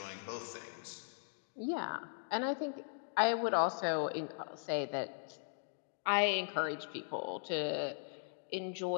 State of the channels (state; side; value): silent; right; digital silence